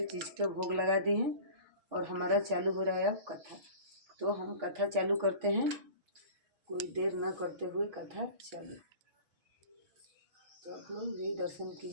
चीज़ के भोग लगा दिए हैं और हमारा चालू हो रहा है अब कथा। तो हम कथा चालू करते हैं, कोई देर न करते हुए कथा चालू। तो आप लोग भी दर्शन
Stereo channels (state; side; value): late; left; 6.2 ms